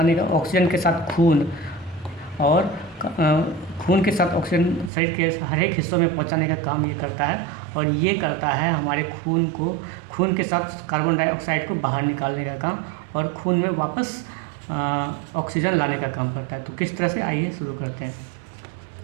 का, ऑक्सीजन के साथ खून और खून के साथ ऑक्सीजन शरीर के हर एक हिस्सों में पहुंचाने का काम ये करता है। और ये करता है हमारे खून के साथ कार्बन डाइऑक्साइड को बाहर निकालने का काम और खून में वापस ऑक्सीजन लाने का काम करता है। तो किस तरह से, आइए शुरू करते हैं।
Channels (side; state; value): left; drops out; at 4.9 s